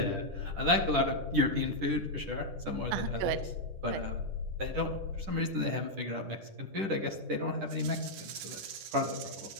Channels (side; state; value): left; late; 10 ms